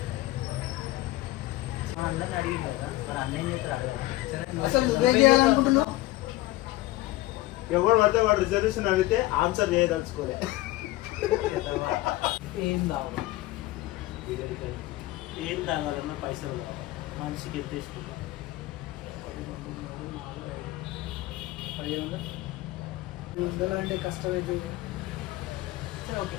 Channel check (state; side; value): quieter; right; 17.8 dB